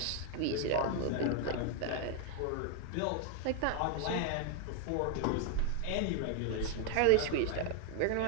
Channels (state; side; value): different; both; correlation 0.00